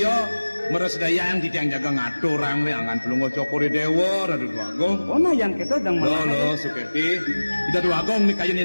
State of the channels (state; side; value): inverted; both; correlation -1.00